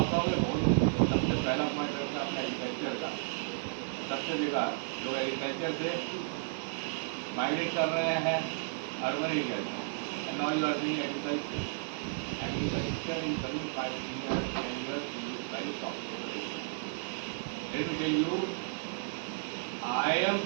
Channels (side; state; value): left; silent; 56 dB below the other